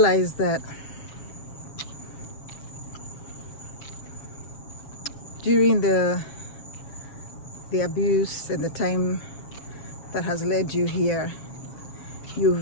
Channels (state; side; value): late; right; 7.2 ms